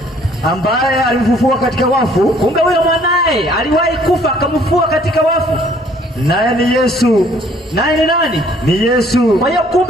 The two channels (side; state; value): both; normal; correlation 0.60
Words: ambaye alimfufua katika wafu. Kumbe huyo mwanae aliwahi kufa akamfufua katika wafu. Naye ni Yesu. Naye ni nani? Ni Yesu. Kwa hiyo